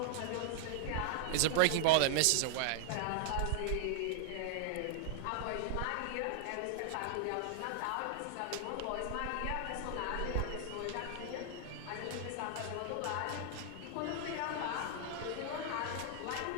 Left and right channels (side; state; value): both; different; correlation 0.00